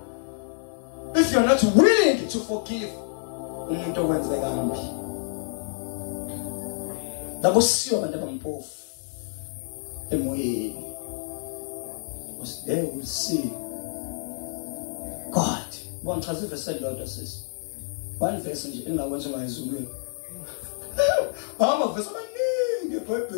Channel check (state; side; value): silent; right; digital silence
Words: If you're not willing to forgive, umuntu owenze kambi. Labo siyo abantu abampofu emoyeni. Because they will see God. One verse said Lord says. One verse nje engawenza ngayizulweni. Ama verse amaningi